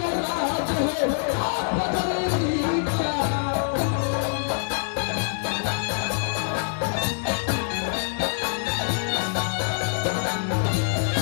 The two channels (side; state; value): right; silent; digital silence